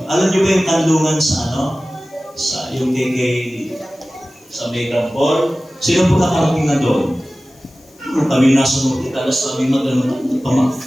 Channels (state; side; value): noise; left; hiss, 30 dB below the sound